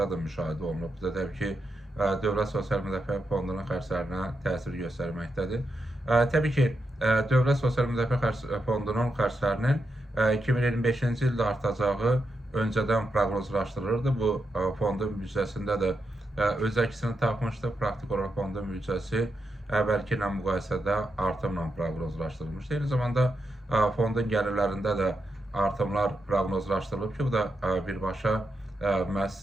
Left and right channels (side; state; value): both; normal; correlation 0.85